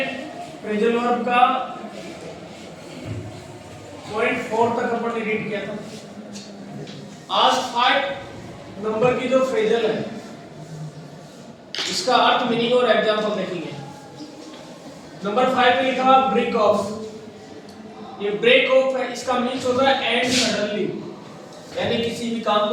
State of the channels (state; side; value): identical; both; correlation 1.00